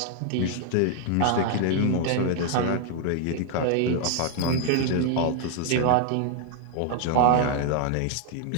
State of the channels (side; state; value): both; different; correlation 0.00